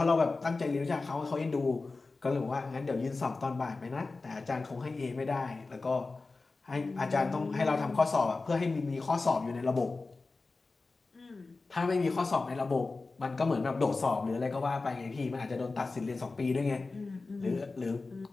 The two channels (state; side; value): quieter; right; 3.7 dB